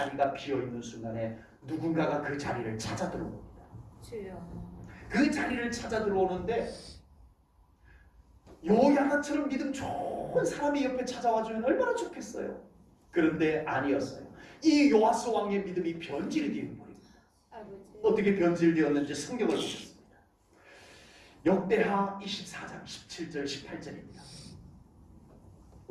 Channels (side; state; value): both; identical; correlation 1.00